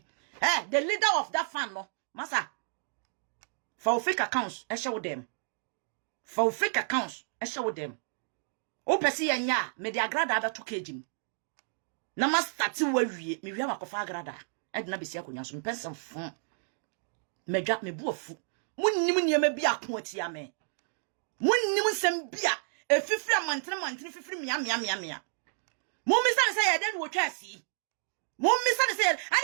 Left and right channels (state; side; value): silent; left; digital silence